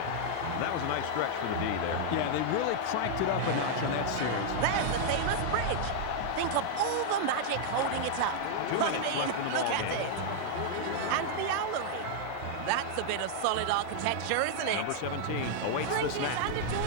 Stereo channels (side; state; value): both; different; correlation 0.00